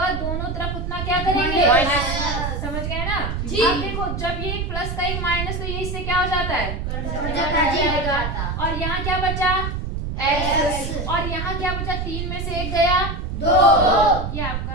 दोनों तरफ उतना क्या करेंगे? माइनस। समझ गए ना? जी। अब देखो जब ये एक प्लस का एक माइनस, तो ये इससे क्या हो जाता है? और यहाँ क्या बचा? x। और यहाँ क्या बचा? 3 में से 1 गया 2। ये आपका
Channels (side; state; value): right; noise; rumble, 3 dB below the sound